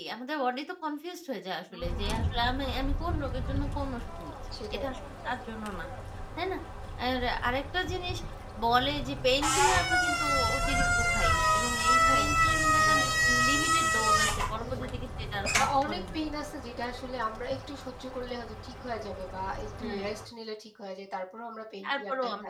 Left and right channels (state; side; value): identical; both; correlation 1.00